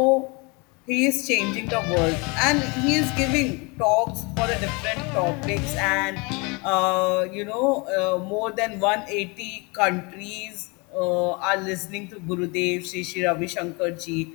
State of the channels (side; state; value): right; quieter; 29.2 dB